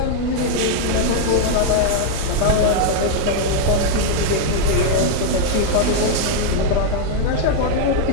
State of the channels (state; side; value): different; both; correlation -0.01